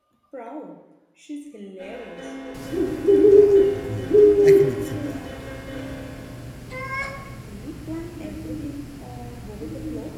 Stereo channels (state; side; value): identical; both; correlation 1.00